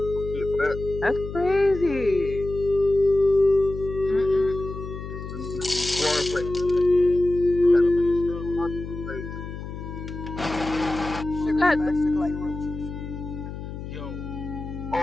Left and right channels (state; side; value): noise; left; hum, 9 dB below the sound